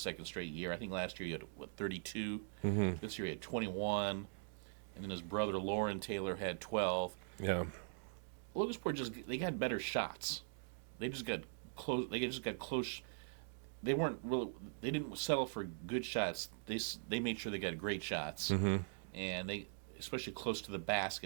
straight year. I think last year he had 32. This year he had 21, and then his brother Lauren Taylor had 12. Yeah, Logansport they got better shots. They just got close. they weren't really, they didn't settle for good shots. They made sure they got great shots, and they, especially close to the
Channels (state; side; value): silent; left; digital silence